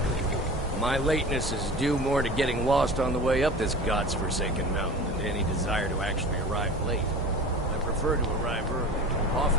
My lateness is due more to getting lost on the way up this god's-forsaken mountain than to any desire to actually arrive late. I prefer to arrive early,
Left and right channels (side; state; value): both; normal; correlation 0.36